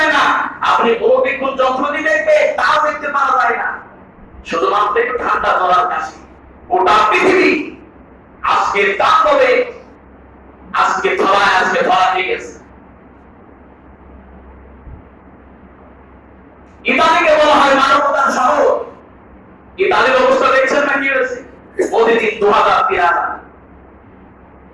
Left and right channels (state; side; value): identical; both; correlation 1.00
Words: না, আপনি অভিজ্ঞান যন্ত্র দিয়ে দেখবে তাও দেখতে পাওয়া যায় না, শুধুমাত্র একটু ঠান্ডা জলার কাশি। গোটা পৃথিবী আজকে তাণ্ডবে, আজকে ধরা দিয়ে গেছে। ইতালিকে বলা হয় মানবতার শহর। ইতালির অবস্থা দেখছেন না কি হয়েছে? প্রতিদিন 2000-3000।